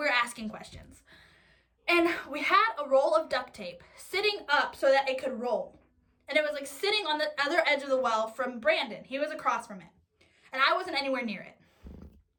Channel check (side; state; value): both; identical; correlation 1.00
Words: asking questions. And we had a roll of duct tape sitting up so that it could roll. And it was like sitting on the other edge of the well from Brandon. He was across from it. And I wasn't anywhere near it.